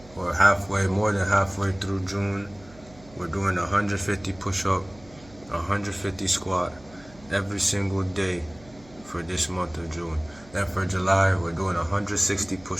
We're more than halfway through June. We're doing 150 push-up, 150 squat every single day for this month of June. And for July, we're doing 160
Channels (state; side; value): noise; right; hum, 23 dB below the sound